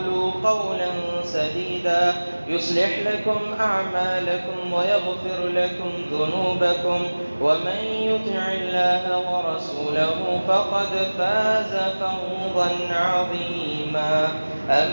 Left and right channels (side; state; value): both; inverted; correlation -1.00